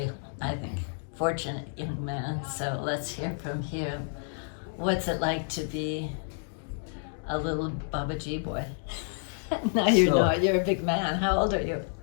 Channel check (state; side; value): silent; right; 58 dB below the other